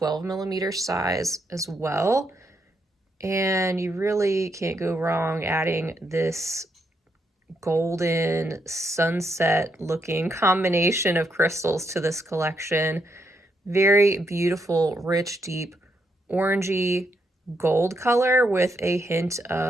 size as well. And you really can't go wrong adding this golden sunset looking combination of crystals to this collection. Very beautiful, rich, deep, orangey gold color with a hint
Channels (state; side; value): normal; both; correlation 0.78